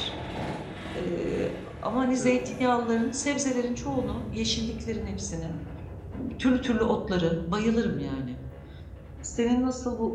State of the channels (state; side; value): identical; both; correlation 1.00